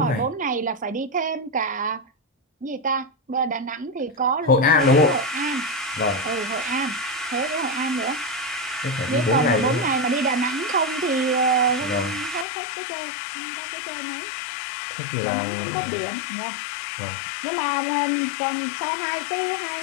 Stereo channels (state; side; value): drops out; right; at 12.5 s